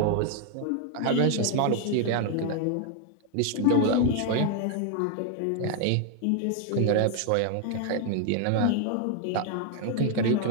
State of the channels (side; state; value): both; different; correlation 0.00